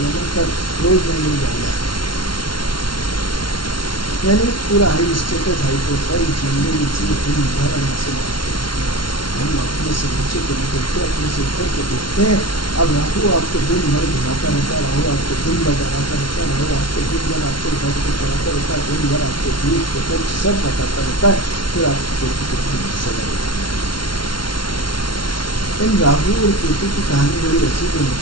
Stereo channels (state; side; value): late; right; 0.72 ms